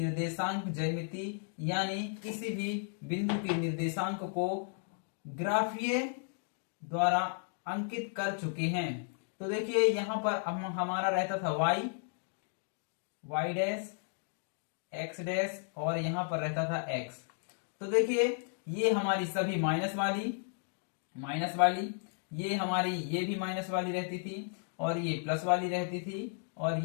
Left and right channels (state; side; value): silent; right; 55 dB below the other